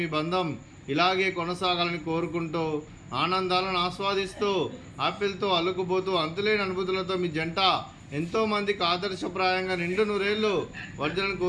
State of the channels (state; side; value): identical; both; correlation 1.00